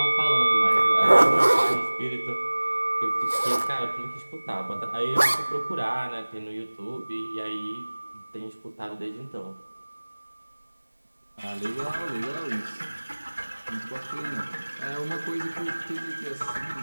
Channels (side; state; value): both; inverted; correlation -1.00